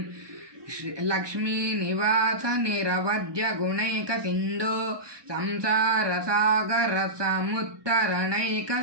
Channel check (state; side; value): late; left; 1.2 ms